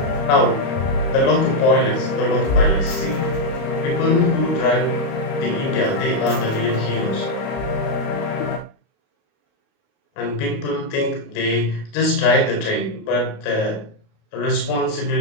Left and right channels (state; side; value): late; right; 28 ms